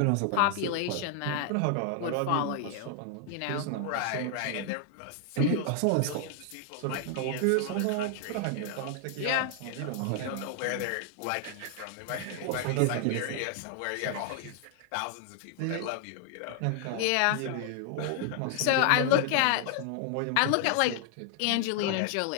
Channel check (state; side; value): different; both; correlation 0.00